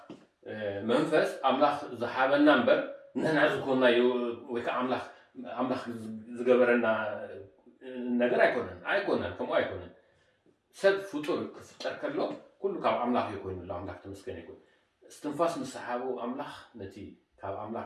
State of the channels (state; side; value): identical; both; correlation 1.00